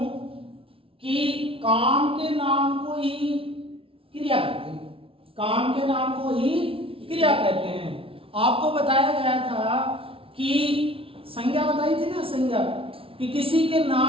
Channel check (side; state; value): left; late; 0.26 ms